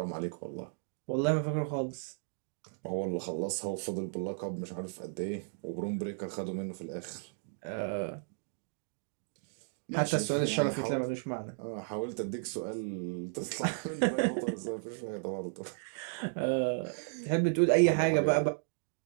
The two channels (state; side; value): silent; left; digital silence